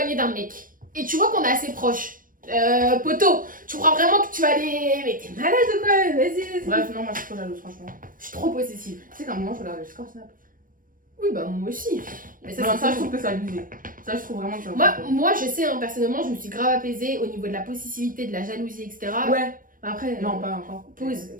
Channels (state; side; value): late; left; 0.40 ms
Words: d'un mec, et tu vois qu'on est assez proches. Poto, tu crois vraiment que tu vas aller. Mais t'es malade ou quoi? Vas-y. Bref, non, moi je suis trop jalouse, franchement. Je suis trop possessive. Tu sais qu'à un moment je regardais le score Snap. Oui, bah moi aussi. Mais ça, Non, c'est ça je tout. trouve que c'est abusé. Ça je trouve vraiment que c'est Moi, je sais, hein, personnellement, je me suis grave apaisée au niveau de la possessivité, de la jalousie, etc. Ouais, Après, non, pas encore. pause,